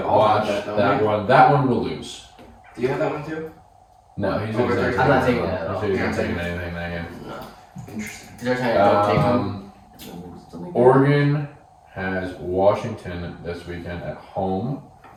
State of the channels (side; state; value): both; identical; correlation 1.00